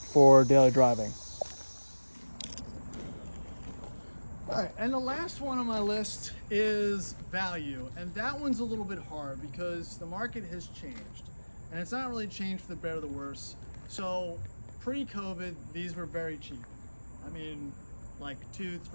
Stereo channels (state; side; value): inverted; both; correlation -1.00